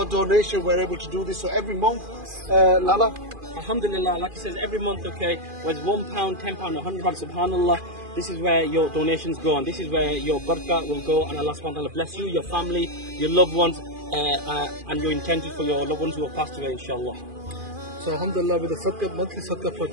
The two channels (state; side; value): late; left; 2.4 ms